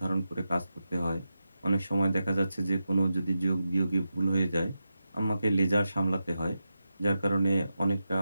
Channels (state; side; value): inverted; both; correlation -0.90